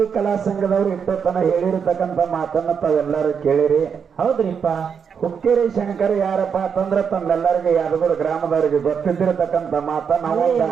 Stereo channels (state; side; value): quieter; left; 6.8 dB